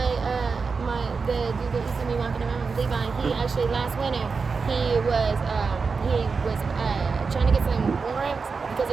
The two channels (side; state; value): left; quieter; 4.9 dB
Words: The dude that used to be walking around, Levi, he actually last winter he was trying to get some warrants because